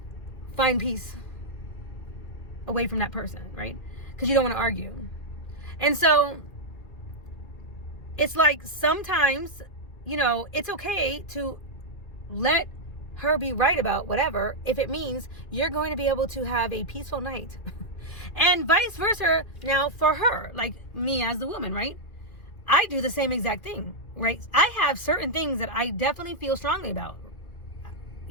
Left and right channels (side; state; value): right; late; 2.4 ms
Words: find peace away from that person, right? Because you don't want to argue. And so it's like, sometimes, you know, it's okay to let her be right about whatever, if it means you're going to be able to have a peaceful night. And vice versa. Now for her, like me as the woman, right? I do the same exact thing, right? I have certain things that I definitely feel strongly about,